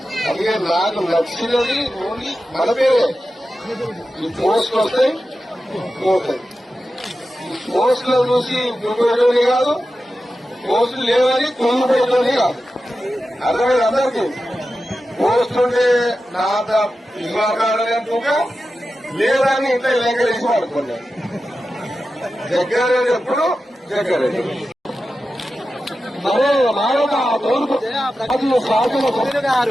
అందుకే నాకు నచ్చినది ఓన్లీ మన పేరే ఈ పోస్ట్ వస్తాయి పోతాయి. పోస్టులో చూసి గురిపోయేటోని కాదు, పోస్టులు లేవని కుంగిపోయేటోని కాదు. అర్థమైంది అందరికీ. పోస్ట్ ఉంటే నా ఇవ్వకాడగా లేదని ఇంట్లో లేఖలేసి వాడుకున్నాను. జగ్గారెడ్డి ఎప్పుడు జగ్గారెడ్డి మరే మానవ తూర్పు శాసన సభ్యులు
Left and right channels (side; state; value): both; normal; correlation 0.92